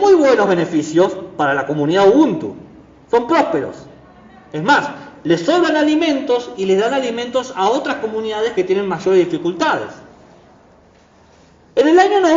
buenos beneficios para la comunidad Ubuntu. Son prósperos. Es más, les sobran alimentos y les dan alimentos a otras comunidades que tienen mayores dificultades. En el año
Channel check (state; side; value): identical; both; correlation 1.00